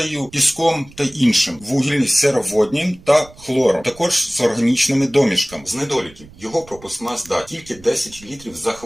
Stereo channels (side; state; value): right; noise; rumble, 22 dB below the sound